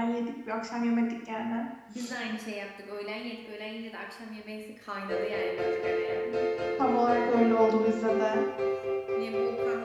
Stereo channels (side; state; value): both; identical; correlation 1.00